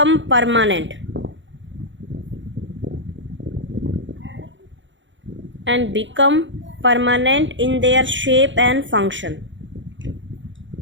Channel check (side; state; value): left; late; 0.54 ms